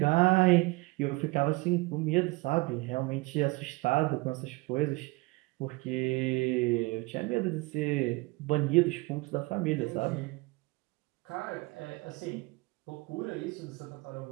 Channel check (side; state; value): left; quieter; 24.2 dB